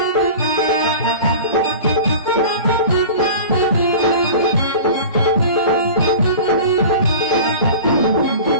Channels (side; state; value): both; inverted; correlation -0.36